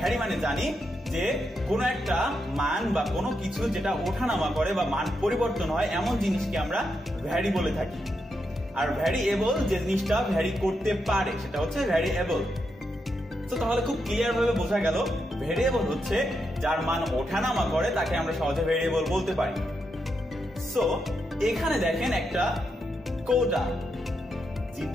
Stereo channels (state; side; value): normal; both; correlation 0.83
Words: মানে জানি যে কোনো একটা মান বা কোনো কিছু যেটা ওঠানামা করে বা মান পরিবর্তন হয় এমন জিনিসকে আমরা ভ্যারি বলে থাকি। আর ভ্যারিয়েবল যে জিনিসটা ভ্যারি করতে পারে সেটা হচ্ছে ভ্যারিয়েবল। তো তাহলে খুব ক্লিয়ার ভাবে বোঝা গেল ভ্যারিয়েবল হচ্ছে যার মান ওঠানামা করে তাকে আমরা সহজে ভ্যারিয়েবল বলতে পারি। সো এখানে দেখেন একটা কৌটা,